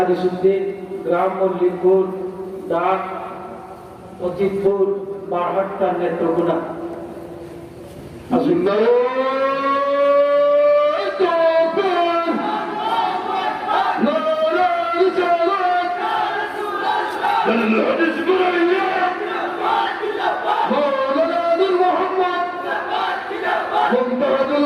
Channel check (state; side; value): identical; both; correlation 1.00